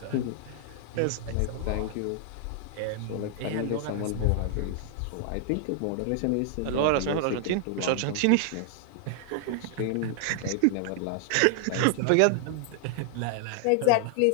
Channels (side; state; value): both; different; correlation 0.00